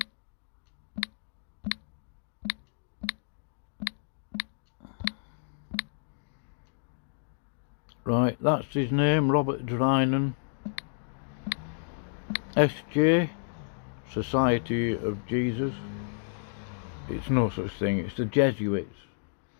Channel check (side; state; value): right; silent; digital silence